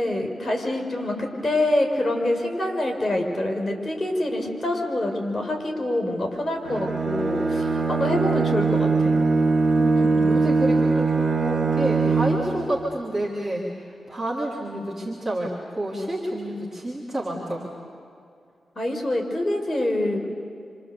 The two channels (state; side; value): normal; both; correlation 0.88